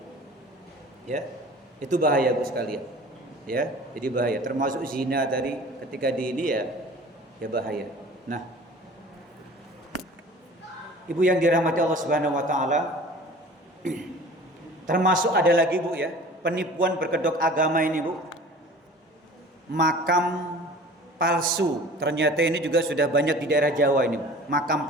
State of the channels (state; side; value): normal; both; correlation 0.44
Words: Ya. Itu bahaya, Bu sekalian. Ya, jadi bahaya. Termasuk zina tadi ketika di ini ya bahaya. Nah, Ibu yang dirahmati Allah Subhanahu wa taala, termasuk ada lagi, Bu, ya, penipuan berkedok agama ini, Bu. Makam palsu. Ternyata ini juga sudah banyak di daerah Jawa ini, makam